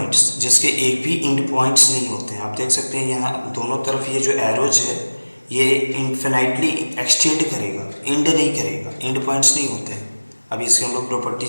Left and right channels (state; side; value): inverted; both; correlation -1.00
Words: जिसके एक भी इंड पॉइंट्स नहीं होते हैं। आप देख सकते हैं यहाँ दोनों तरफ ये जो एरोज है, ये इन्फिनाइटली एक्सटेंड करेगा, इंड नहीं करेगा, इंड पॉइंट्स नहीं होते हैं। अभी इसके हम लोग प्रॉपर्टी